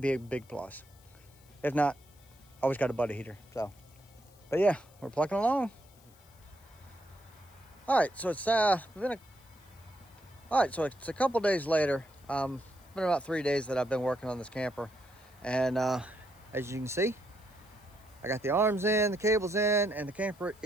be a big plus. If not, always got a buddy heater. So, but yeah, we're plucking along. All right, so it's been a couple days later. It's been about 3 days that I've been working on this camper, and as you can see, I got the arms in, the cables in, and the camper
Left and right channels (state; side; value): noise; left; hiss, 28 dB below the sound